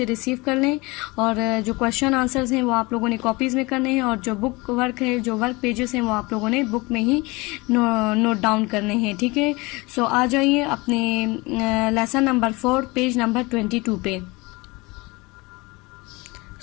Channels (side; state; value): right; quieter; 24.2 dB